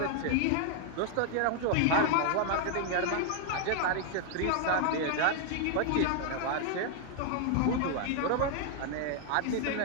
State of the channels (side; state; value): both; different; correlation 0.00